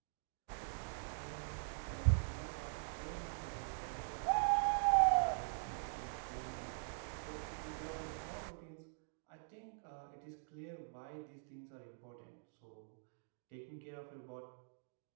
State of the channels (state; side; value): silent; left; digital silence